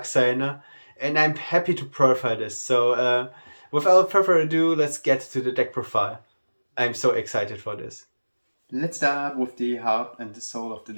and I'm happy to profile this. So, without further ado, let's get to the deck profile. I'm so excited for this. Let's start with the heart and the soul of the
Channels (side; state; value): both; inverted; correlation -1.00